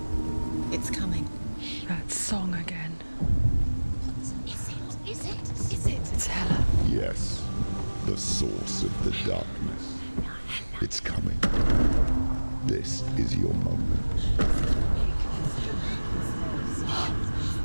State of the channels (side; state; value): both; inverted; correlation -1.00